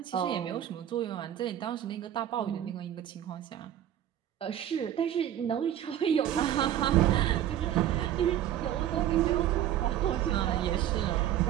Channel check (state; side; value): quieter; left; 11.4 dB